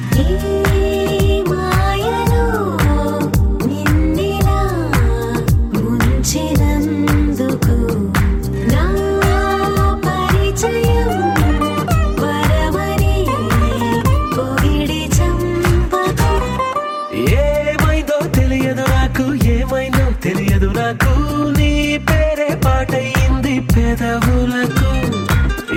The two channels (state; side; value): identical; both; correlation 1.00